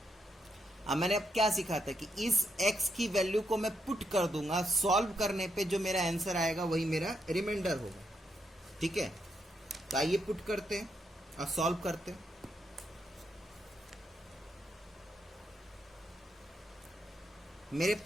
अब मैंने अब क्या सीखा था कि इस x की वैल्यू को मैं पुट कर दूंगा, सॉल्व करने पे जो मेरा आंसर आएगा वही मेरा रिमाइंडर होगा। ठीक है, तो आइए पुट करते हैं और सॉल्व करते हैं। मेरे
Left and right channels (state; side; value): normal; both; correlation 0.79